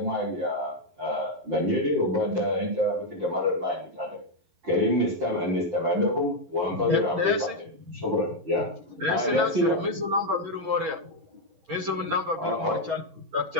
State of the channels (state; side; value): late; left; 11 ms